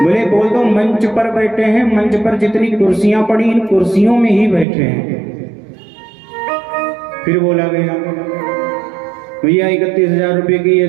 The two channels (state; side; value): drops out; left; at 4.7 s